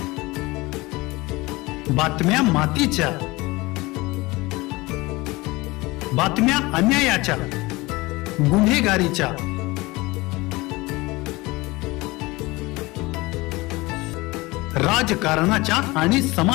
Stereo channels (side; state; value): right; quieter; 22.1 dB